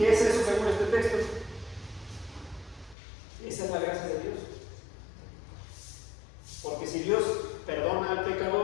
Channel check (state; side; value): drops out; right; at 3.0 s